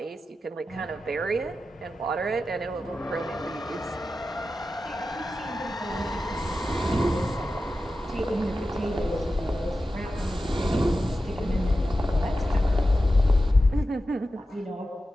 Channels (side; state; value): both; normal; correlation 0.92